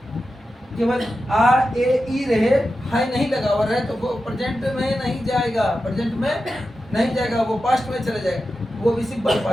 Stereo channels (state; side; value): normal; both; correlation 0.91